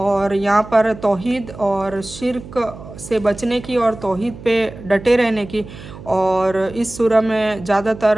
यहाँ पर तौहीद और शिर्क से बचने की और तौहीद पे डटे रहने की और इस सूरह में ज़्यादातर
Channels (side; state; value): right; noise; hum, 15 dB below the sound